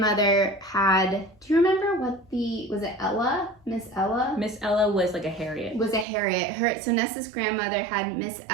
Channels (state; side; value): drops out; left; at 6.1 s